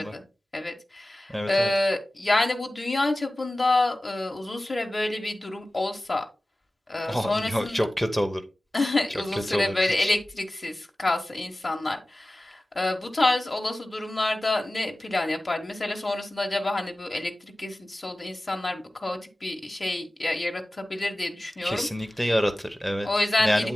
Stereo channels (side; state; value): both; normal; correlation 0.97